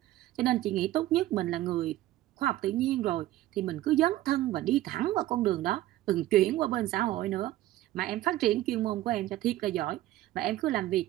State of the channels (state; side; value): quieter; left; 15.1 dB